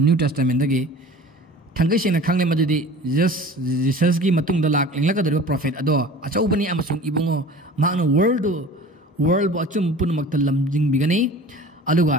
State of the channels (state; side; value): normal; both; correlation 0.42